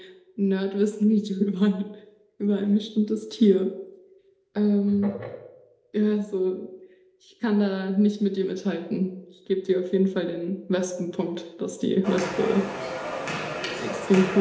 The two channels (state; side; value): identical; both; correlation 1.00